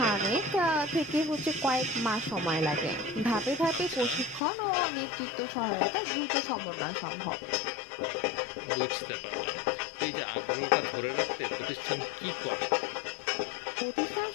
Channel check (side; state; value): right; drops out; at 4.4 s